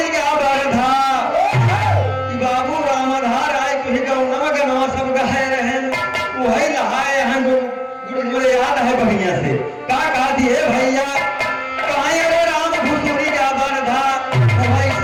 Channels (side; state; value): both; identical; correlation 1.00